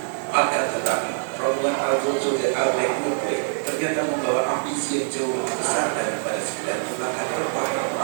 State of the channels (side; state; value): left; silent; digital silence